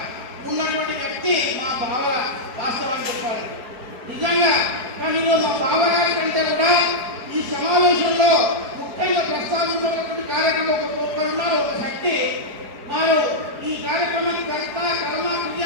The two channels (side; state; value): left; late; 4.7 ms